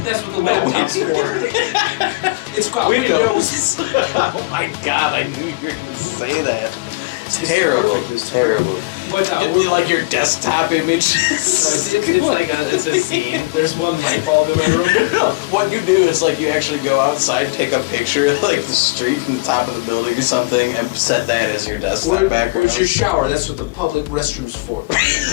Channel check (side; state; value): right; quieter; 25.0 dB